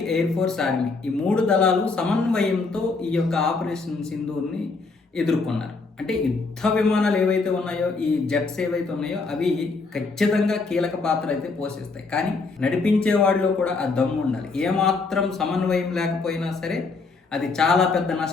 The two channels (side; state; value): right; quieter; 4.1 dB